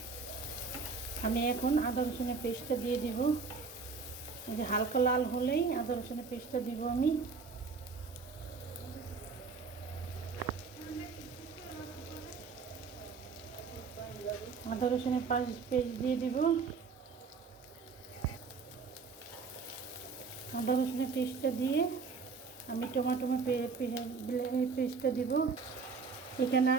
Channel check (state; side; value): quieter; left; 4.9 dB